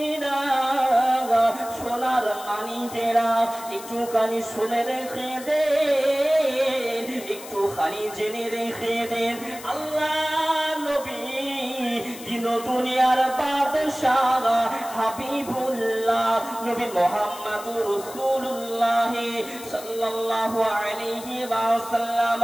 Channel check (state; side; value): noise; left; hiss, 15 dB below the sound